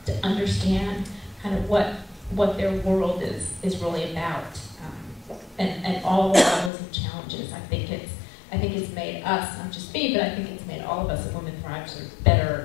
understand kind of what their world is really about, and all the levels of challenges. I think it's made us, not just me, but I think it's made all of us at Women Thrive sort of better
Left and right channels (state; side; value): drops out; right; at 6.7 s